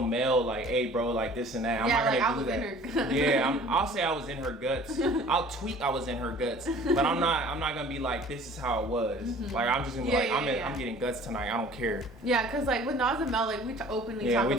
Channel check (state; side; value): noise; right; rumble, 28 dB below the sound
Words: Mel like, hey bro, like this and that. I'm Yeah, not like, gonna I was do that. in her guts. Yeah, I'll say I was in her guts. I'll tweet I was in her guts. But I'm not gonna be like, this is how it was. Like, I'm just gonna be I'm getting guts tonight. I don't care. Yeah, because like with Nas and Mel, like we openly Yeah, talk we